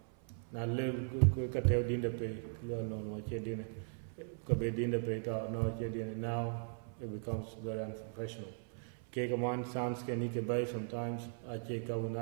Now quick at dinner pay, no, dinner, Kabe dinner pay, no, dinner. Now it becomes very unprofessional. Cake a man sounds can you can buy sometimes. I check a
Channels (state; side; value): silent; left; 52 dB below the other